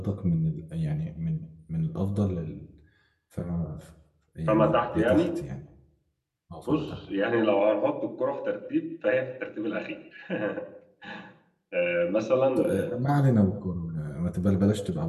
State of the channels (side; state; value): both; identical; correlation 1.00